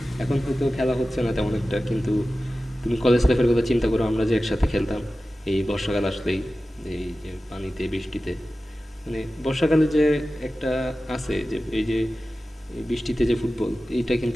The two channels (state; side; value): normal; both; correlation 0.95